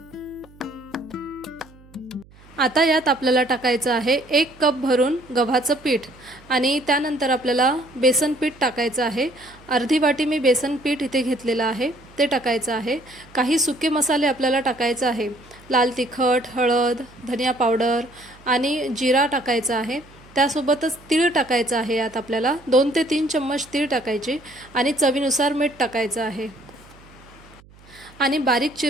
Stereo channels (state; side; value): noise; right; hum, 25 dB below the sound